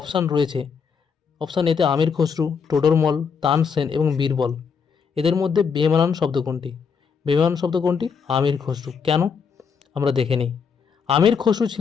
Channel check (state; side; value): quieter; right; 6.1 dB